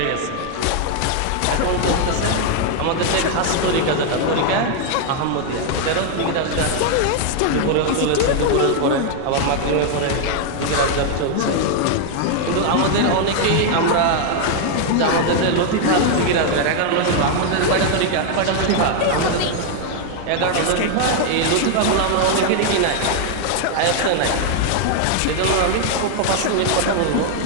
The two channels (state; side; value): different; both; correlation 0.00